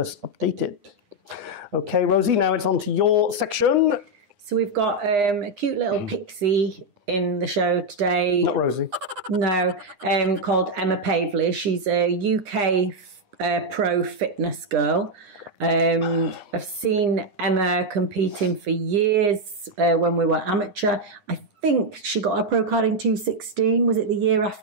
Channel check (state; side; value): late; left; 9.8 ms